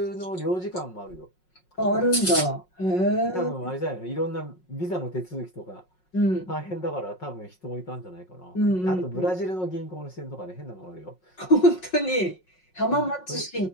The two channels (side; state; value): right; late; 5.5 ms